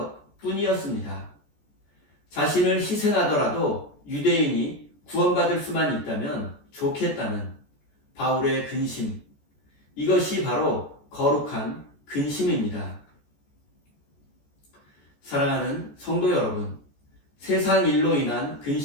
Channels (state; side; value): late; right; 14 ms